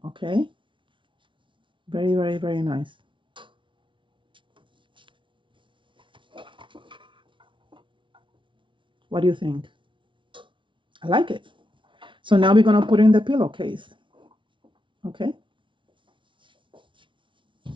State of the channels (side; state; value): left; late; 0.24 ms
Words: Okay. Very, very, very nice. What do you think? I like it. So now we're going to put in the pillowcase. Okay.